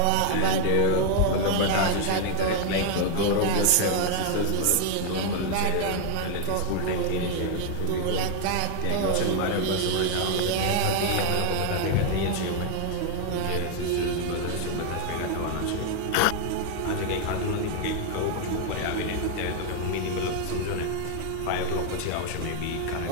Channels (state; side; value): different; both; correlation 0.00